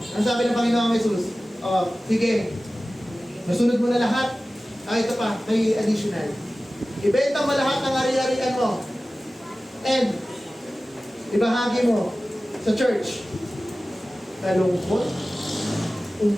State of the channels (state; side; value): normal; both; correlation 0.96